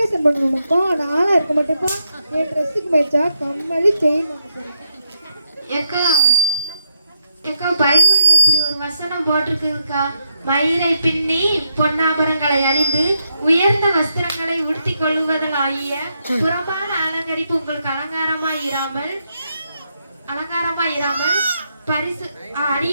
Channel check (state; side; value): inverted; both; correlation -0.79